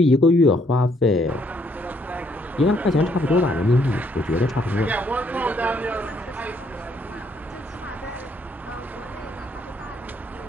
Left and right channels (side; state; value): both; normal; correlation 0.69